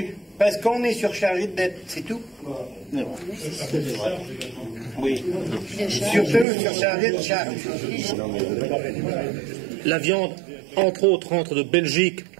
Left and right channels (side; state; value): left; drops out; at 6.5 s